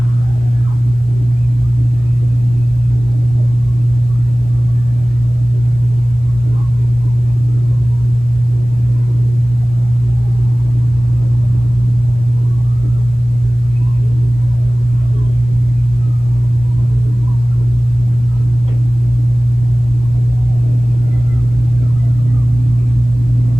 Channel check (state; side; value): normal; both; correlation 0.98